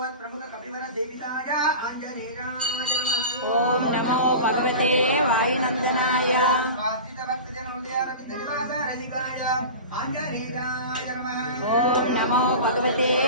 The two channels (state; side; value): inverted; both; correlation -0.31